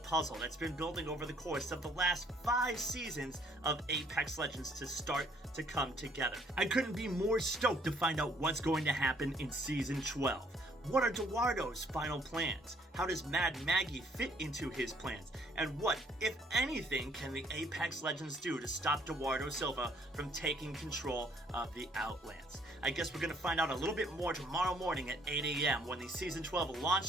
that's been building over the course of the last 5 seasons of Apex Legends to start to come together. I couldn't be more stoked to find out what's going to happen in Season 12. What are Duardo's final plans? How does Mad Maggie fit into his plans? And what, if anything, can the Apex Legends do to stop Eduardo Silva from taking control of the Outlands? I guess we're going to find out a little bit more tomorrow morning at 8 a.m. when the Season 12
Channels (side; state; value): both; normal; correlation 0.63